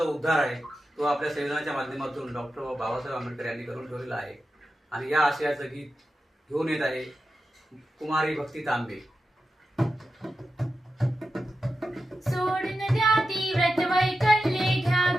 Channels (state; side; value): normal; both; correlation 0.91